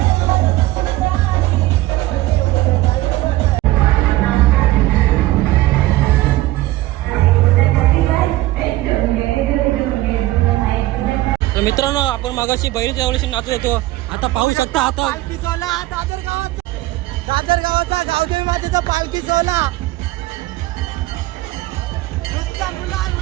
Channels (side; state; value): left; quieter; 17.5 dB